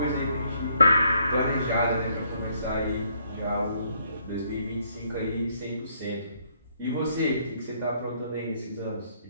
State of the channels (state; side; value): inverted; both; correlation -0.69